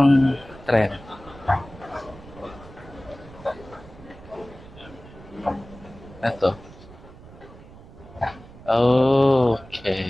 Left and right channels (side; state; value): right; noise; rumble, 19 dB below the sound